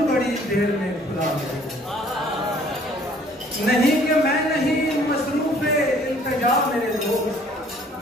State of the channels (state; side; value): normal; both; correlation 0.57